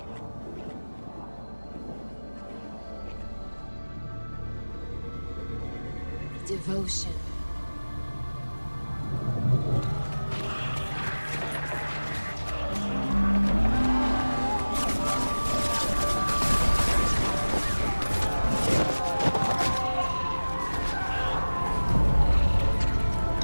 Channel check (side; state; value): both; inverted; correlation -1.00